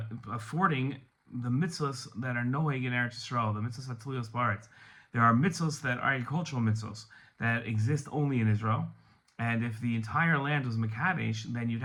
the mitzvahs that are noeg in Eretz Yisrael, the mitzvahs hatuliyos ba'aretz. There are mitzvahs that are agricultural mitzvahs that exist only in Israel, and if the entire land was Mekadesh, then you'd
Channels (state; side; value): identical; both; correlation 1.00